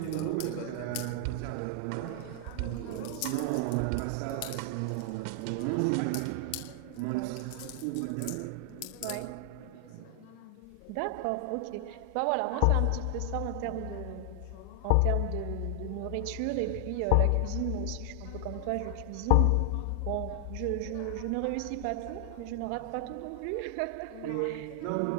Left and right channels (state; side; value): different; both; correlation 0.00